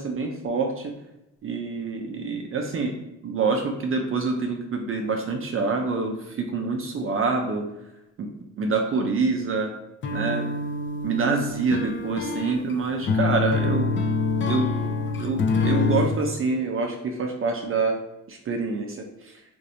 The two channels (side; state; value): both; normal; correlation 0.26